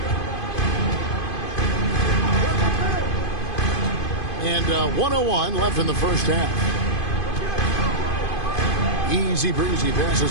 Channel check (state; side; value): late; right; 2.5 ms